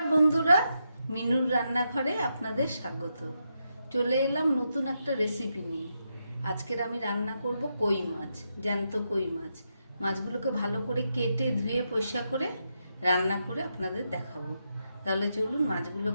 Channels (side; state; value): both; inverted; correlation -0.84